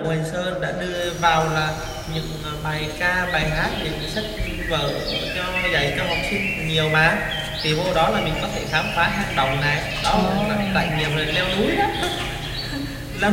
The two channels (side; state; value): both; identical; correlation 1.00